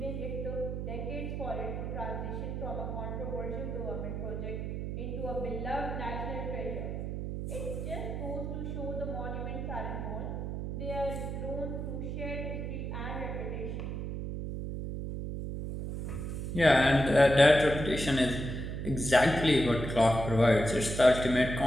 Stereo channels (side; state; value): right; noise; hum, 4 dB below the sound